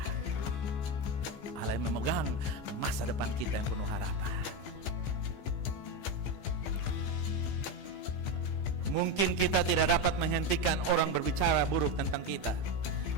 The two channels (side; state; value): right; late; 15 ms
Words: Allah yang memegang masa depan kita yang penuh harapan. Mungkin kita tidak dapat menghentikan orang berbicara buruk tentang kita,